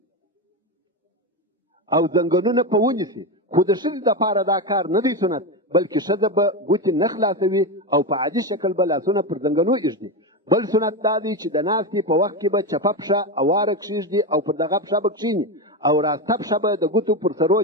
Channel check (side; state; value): both; normal; correlation 0.15